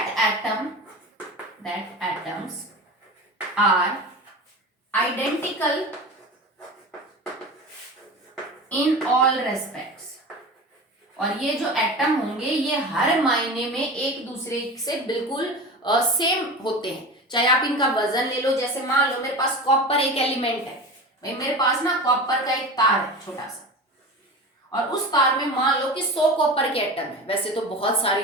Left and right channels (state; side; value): normal; both; correlation 0.30